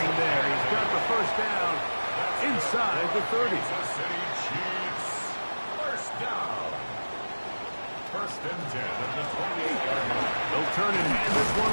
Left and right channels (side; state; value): both; inverted; correlation -1.00